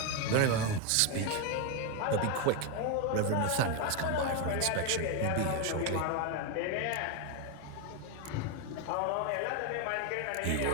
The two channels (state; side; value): different; both; correlation 0.02